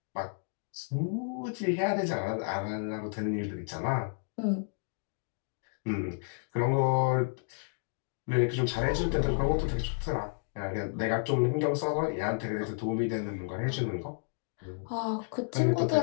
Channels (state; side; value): silent; right; digital silence